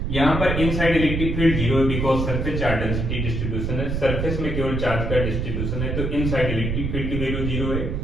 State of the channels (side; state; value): right; noise; rumble, 1 dB below the sound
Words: यहां पर इनसाइड इलेक्ट्रिक फील्ड 0 है because surface charge density distribution है। सरफेस में केवल चार्ज का डिस्ट्रीब्यूशन है, तो इनसाइड इलेक्ट्रिक फील्ड की वैल्यू 0 है,